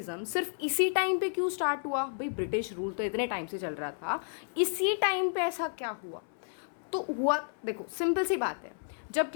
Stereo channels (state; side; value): silent; right; 57 dB below the other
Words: सिर्फ इसी टाइम पे क्यों स्टार्ट हुआ? भाई ब्रिटिश रूल तो इतने टाइम से चल रहा था, इसी टाइम पे ऐसा क्या हुआ? तो हुआ, देखो सिंपल सी बात है, जब